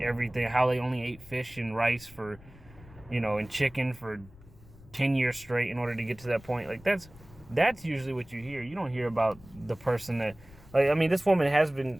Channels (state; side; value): noise; left; rumble, 21 dB below the sound